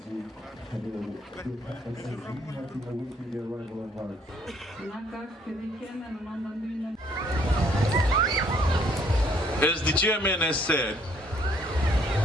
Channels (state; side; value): normal; both; correlation 0.64